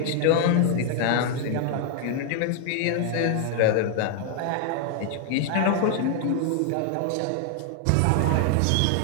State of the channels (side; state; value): both; different; correlation 0.00